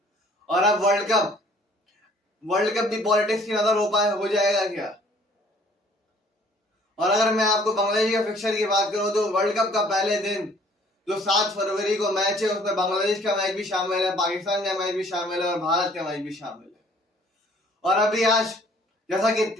और अब वर्ल्ड कप भी पॉलिटिक्स की नजर हो जाएगा क्या? और अगर मैं आपको बांग्लादेश का फिक्सचर की बात करूं तो वर्ल्ड कप का पहले दिन जो 7 फरवरी को मैच है, उसमें बांग्लादेश का मैच भी शामिल है, पाकिस्तान का मैच भी शामिल है, और भारत का मैच भी शामिल है। और अभी आज जैसा कि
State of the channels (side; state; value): both; normal; correlation 0.57